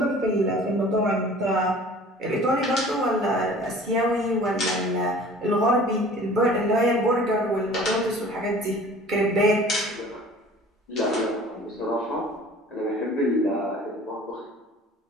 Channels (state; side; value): normal; both; correlation 0.47